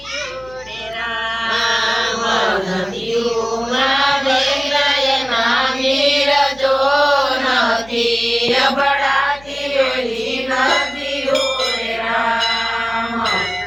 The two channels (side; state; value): left; noise; hum, 23 dB below the sound